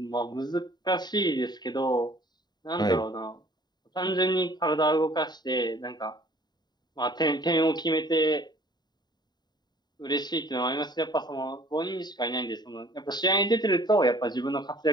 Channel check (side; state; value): right; late; 0.20 ms